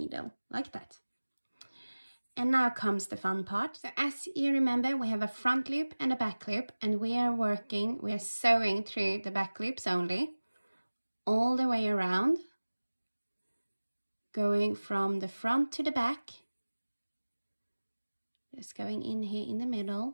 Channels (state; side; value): inverted; both; correlation -1.00